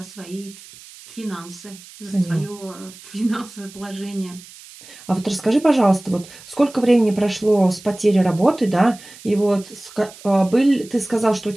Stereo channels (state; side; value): noise; right; hiss, 20 dB below the sound